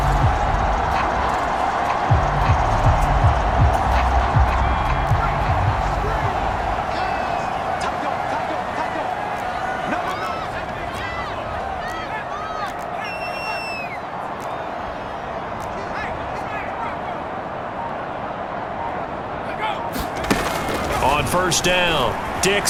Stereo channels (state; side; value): identical; both; correlation 1.00